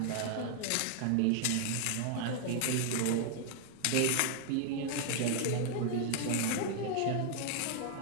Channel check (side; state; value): both; different; correlation 0.00